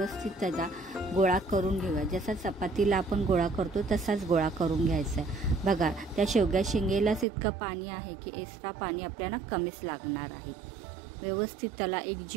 त्याचा गोळा करून घेऊया। जसा चपातीला आपण गोळा करतो तसाच गोळा करून घ्यायचा आहे। बघा त्या शेवग्या शेंगेलाच इतकं पाणी आहे की एक्स्ट्रा पाणी आपल्याला कमीच लागणार आहे। व्यवस्थित त्याला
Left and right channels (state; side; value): drops out; left; at 7.2 s